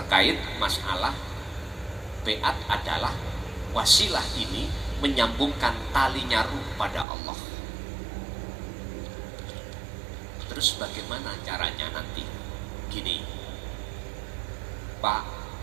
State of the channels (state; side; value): drops out; left; at 7.1 s